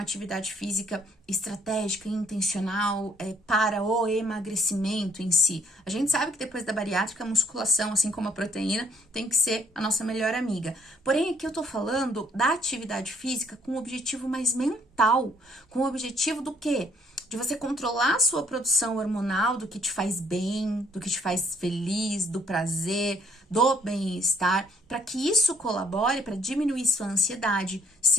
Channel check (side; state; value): both; normal; correlation 0.65